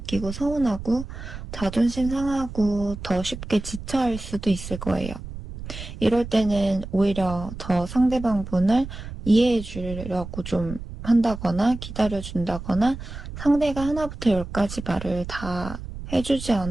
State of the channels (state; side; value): noise; right; rumble, 10 dB below the sound